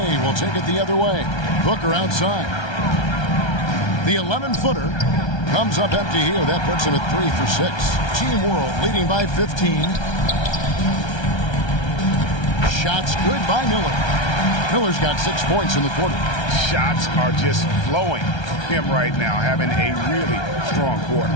will take it the other way. Booker outside. The 11-footer comes up empty here. That puts him at 3 for 6. Team World leading by 15. Shots good by Miller. Miller's got 6 points in the quarter. Shots are just flowing from him right now, having a really strong quarter.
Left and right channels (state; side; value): late; right; 1.3 ms